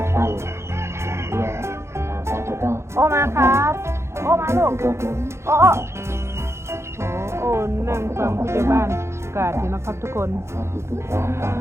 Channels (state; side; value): late; left; 0.13 ms